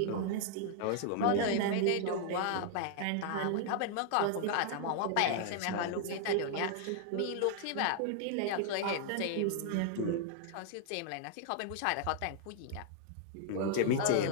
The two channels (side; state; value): both; different; correlation 0.00